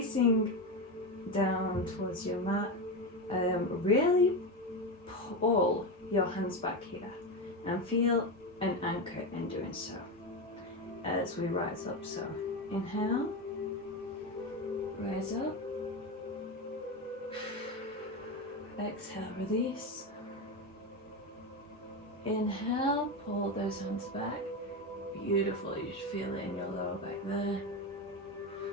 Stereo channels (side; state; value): both; normal; correlation 0.16